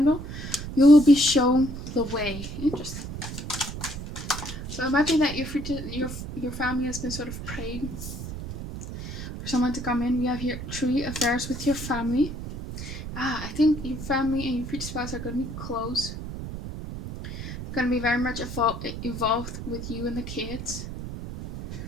You will be shown the way. Interesting. So it might be that your family has been sort of praying for someone to come in. We have here tree, affairs with your family. I think your family and your future spouse are going to be close. They're going to be very much involved with you and the kids.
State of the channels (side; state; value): right; noise; rumble, 8 dB below the sound